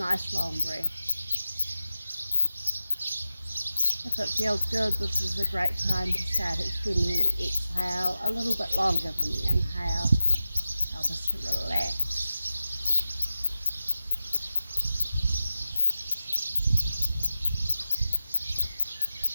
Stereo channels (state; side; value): inverted; both; correlation -0.92